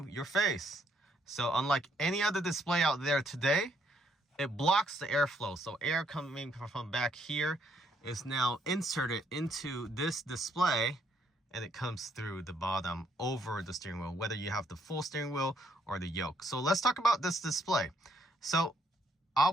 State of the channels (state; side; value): normal; both; correlation 0.71